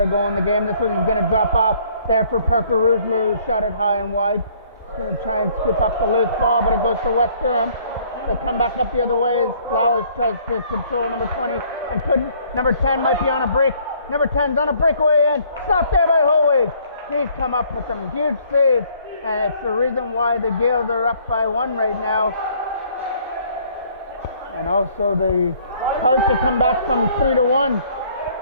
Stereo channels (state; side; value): inverted; both; correlation -0.61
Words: go in the game. This one he's going to drop off there for Parker Roosler, who shot it high and wide. He's going to try and scoop up the loose ball, but it goes to West Durham. They come back up the other way as Flowers tries to control number 20 and couldn't. Number 10 might be on a break. Number 10's on a breakaway and stopped there by Hołig. He's come up with some huge saves, and it's the reason why the Gaels are up by 1 right now. And also the hard to come back from 3-1.